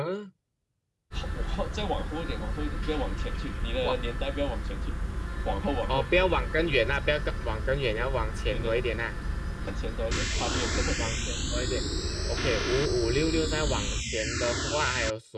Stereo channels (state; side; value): identical; both; correlation 1.00